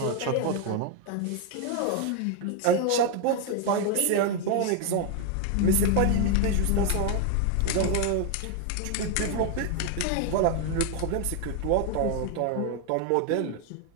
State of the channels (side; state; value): both; different; correlation 0.01